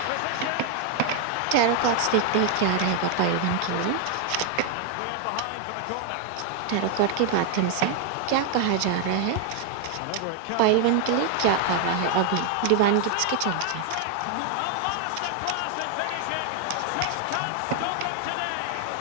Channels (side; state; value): both; different; correlation 0.00